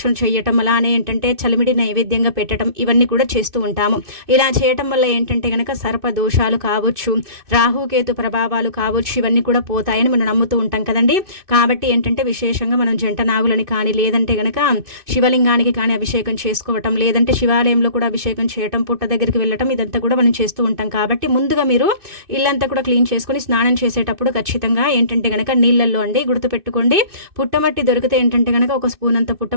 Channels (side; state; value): left; late; 2.6 ms